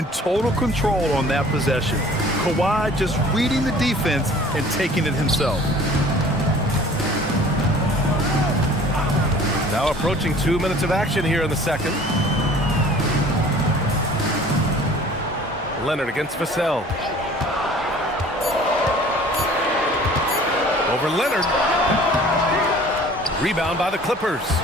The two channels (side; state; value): both; normal; correlation 0.49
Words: total control on that possession. Kawhi just reading the defense and taking it himself. Now approaching 2 minutes of action here in the second. Leonard against Vassell. Over Leonard. Rebound by the Clippers.